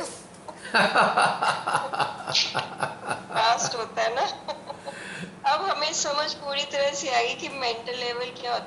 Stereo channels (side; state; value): both; identical; correlation 1.00